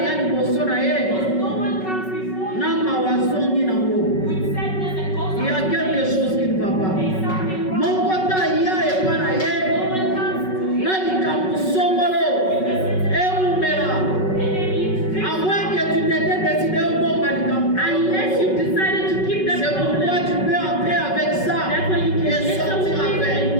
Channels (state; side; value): late; right; 5.3 ms